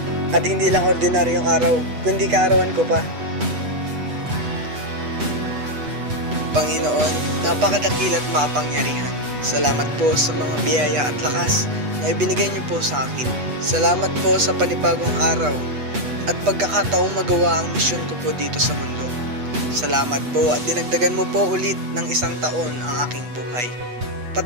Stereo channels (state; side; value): late; left; 8.2 ms